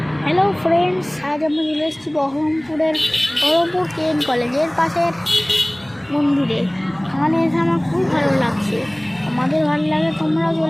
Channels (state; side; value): noise; left; hum, 29 dB below the sound